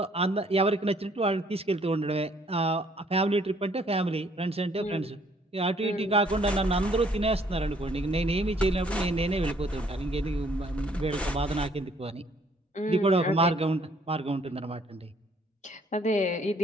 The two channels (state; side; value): normal; both; correlation 0.63